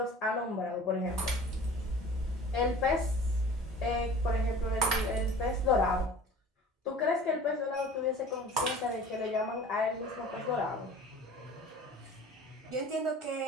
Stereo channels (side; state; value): both; normal; correlation 0.43